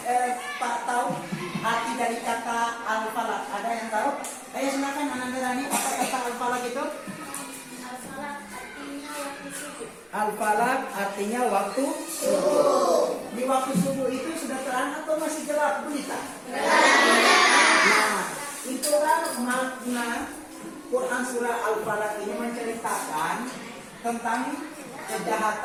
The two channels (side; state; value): both; identical; correlation 1.00